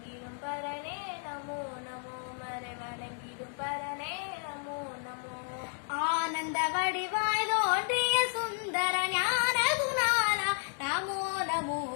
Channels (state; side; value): silent; right; 56 dB below the other